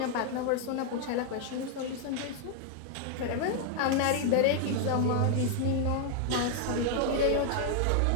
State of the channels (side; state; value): both; different; correlation 0.00